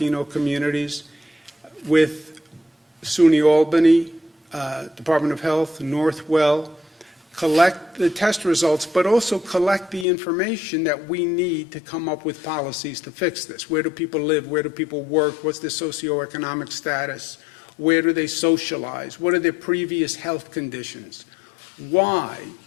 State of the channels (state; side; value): drops out; right; at 10.1 s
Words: communities. With SUNY Albany, Department of Health, Northwell, collect the test results, but also collect the information that we need to come up with policies to fix this. Where do people live? Where do people work? What's their socioeconomic status? Where do they socialize? What are their previous health conditions? Why